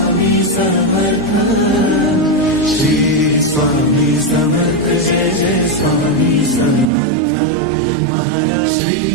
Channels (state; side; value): drops out; left; at 6.9 s